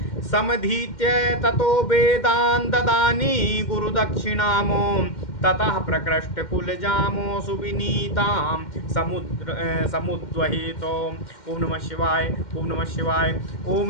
समधीत्य ततो वेदान् ददानि गुरुदक्षिणामो ततः प्रकृष्ट कुलजामो सुविनीतां समुद्वहितो। ओम नमः शिवाय, ओम नमः शिवाय,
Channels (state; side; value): late; right; 2.1 ms